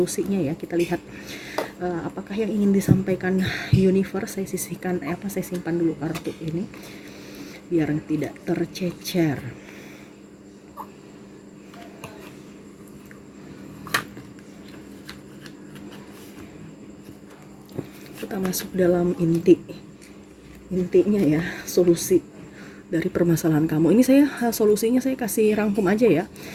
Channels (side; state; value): both; identical; correlation 1.00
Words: ya. Kita lihat apakah yang ingin disampaikan universe. Saya simpan dulu kartu ini biar tidak tercecer. Kita masuk dalam intinya ya, solusi dari permasalahan kamu. Ini saya solusinya saya kasih rangkum aja ya,